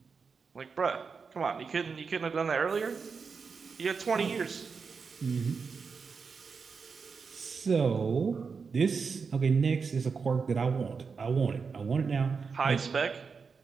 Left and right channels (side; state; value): left; quieter; 5.3 dB